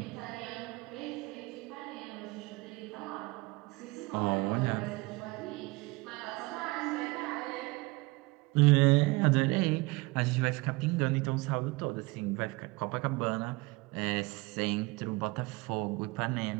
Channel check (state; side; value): quieter; left; 23.8 dB